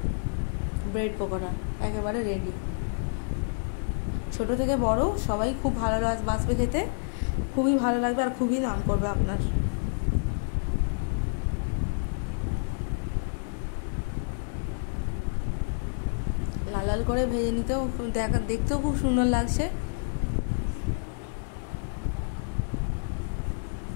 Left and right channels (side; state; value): right; silent; digital silence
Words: ব্রেড পকোড়া একেবারে রেডি। ছোট থেকে বড় সবাই খুব ভালো বাসবে খেতে, খুবই ভালো লাগবে আর খুবই নাম করবে আপনার। লাল লাল করে ভেজে নিতেও দেখতেও খুব সুন্দর লাগছে।